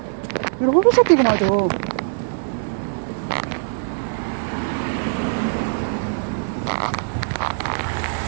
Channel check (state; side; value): silent; left; digital silence